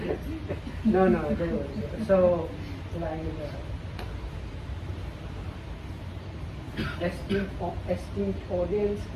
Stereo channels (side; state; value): both; identical; correlation 1.00